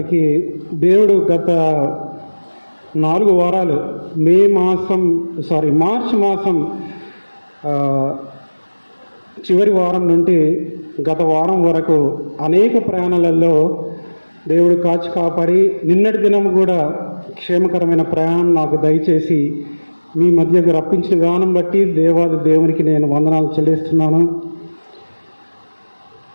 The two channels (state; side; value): inverted; both; correlation -1.00